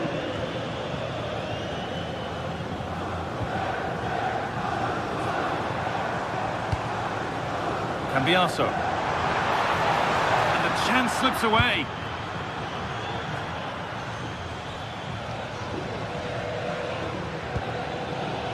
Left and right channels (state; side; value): identical; both; correlation 1.00